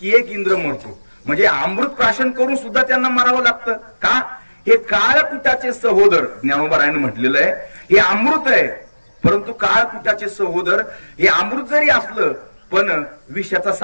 की एक इंद्र मरतो. म्हणजे अमृत प्राशन करून सुद्धा त्यांना मारावं लागतं का? हे काळकुटाचे सहोदर, ज्ञानोबारायनं म्हटलेलं आहे, हे अमृत आहे. परंतु काळकुटाचे सहोदर, हे अमृत जरी असलं पण विषाचा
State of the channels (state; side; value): inverted; both; correlation -1.00